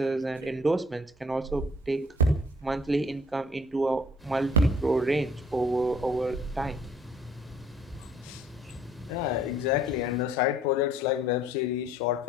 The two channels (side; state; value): both; normal; correlation 0.58